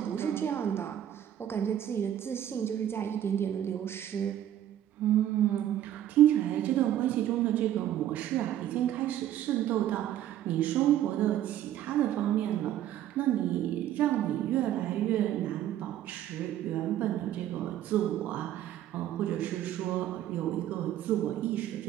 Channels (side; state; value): left; quieter; 11.7 dB